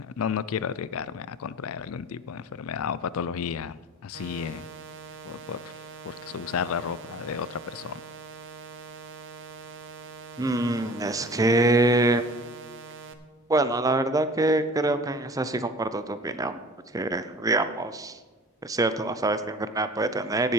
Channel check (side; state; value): both; normal; correlation 0.42